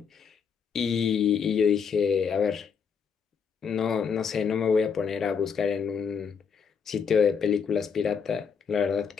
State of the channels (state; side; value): quieter; right; 6.5 dB